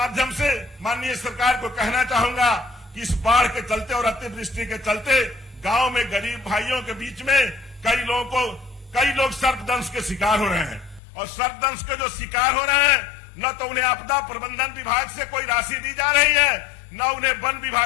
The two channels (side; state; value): right; drops out; at 11.0 s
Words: से माननीय सरकार को कहना चाहूंगा कि इस बाढ़ के चलते और अतिवृष्टि के चलते गांव में गरीब भाइयों के बीच में कई लोग सर्पदंश के शिकार हो रहे हैं। और सर्पदंश के जो शिकार हो रहे हैं, न तो उन्हें आपदा प्रबंधन विभाग से कोई राशि दी जा रही है, न उन्हें वन